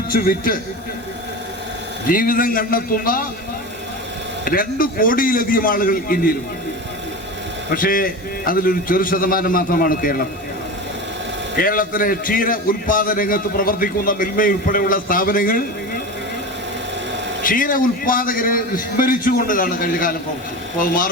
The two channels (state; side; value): normal; both; correlation 0.27